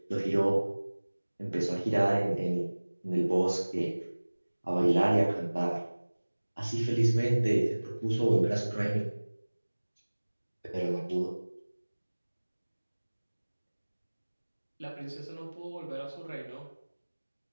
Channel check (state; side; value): inverted; both; correlation -1.00